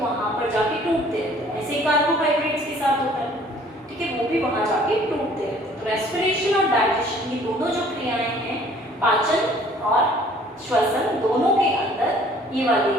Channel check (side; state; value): both; normal; correlation 0.55